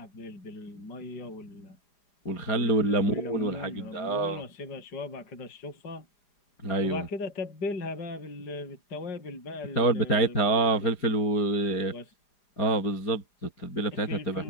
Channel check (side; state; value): right; late; 4.9 ms